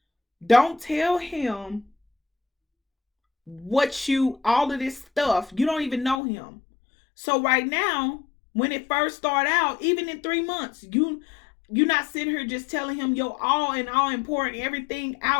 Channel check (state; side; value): drops out; right; at 6.2 s